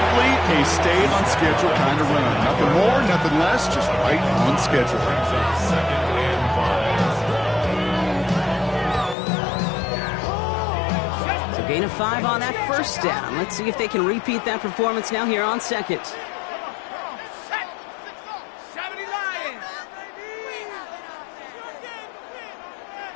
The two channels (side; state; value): right; drops out; at 9.2 s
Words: a stay-on-schedule kind of run. Nothing more, nothing less, just right on schedule. 2nd and 5. So gain of 5 on that 1st down. Let's see if they can repeat that performance now here on 2nd. Set. 70 line.